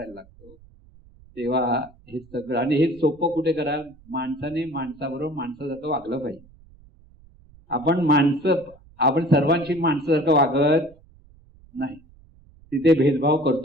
लागतो तेव्हा हे सगळं. आणि हे सोपं कुठे करा, माणसाने माणसाबरोबर माणसासारखं वागलं पाहिजे. आपण सर्वांशी माणसासारखं वागत नाही, तिथे भेदभाव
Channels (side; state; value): right; noise; rumble, 26 dB below the sound